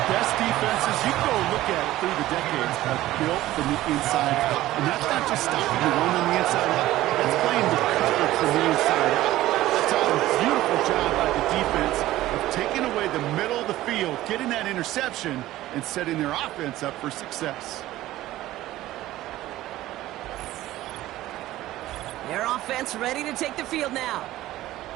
best defenses, you can go look at it through the decades, have built from the inside out. And that's not just stopping the run on the inside out. That's playing the cover from the inside out. That's a beautiful job by the defense of taking away the middle of the field, getting that interception, and setting their offense up for success. Their offense ready to take the field now.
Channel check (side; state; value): left; quieter; 15.5 dB